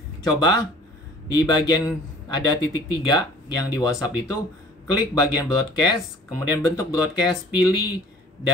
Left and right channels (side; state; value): both; normal; correlation 0.50